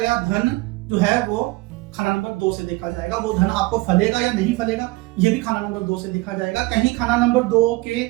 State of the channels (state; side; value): quieter; left; 21.5 dB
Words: धन जो है वो खाना नंबर 2 से देखा जाएगा। वो धन आपको फलेगा या नहीं फलेगा, ये भी खाना नंबर 2 से देखा जाएगा। कहीं खाना नंबर 2 के